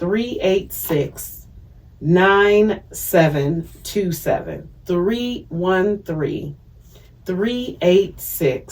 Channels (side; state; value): both; identical; correlation 1.00